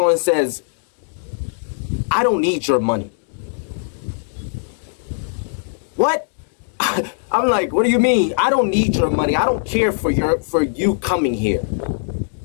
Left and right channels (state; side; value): silent; right; digital silence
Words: on and says, "I don't need your money." What? I'm like, "What do you mean? I don't need your money. I don't care for you coming here."